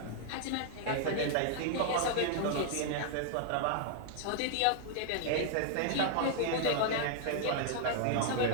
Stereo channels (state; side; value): different; both; correlation 0.00